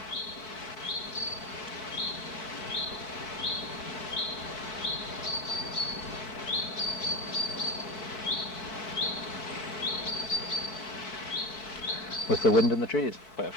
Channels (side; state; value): right; late; 4.6 ms